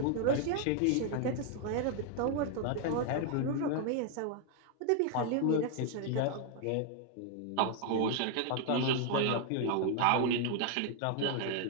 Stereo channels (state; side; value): different; both; correlation 0.00